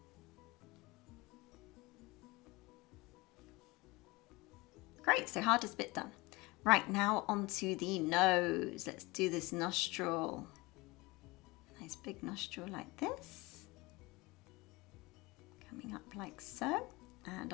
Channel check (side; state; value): right; quieter; 23.0 dB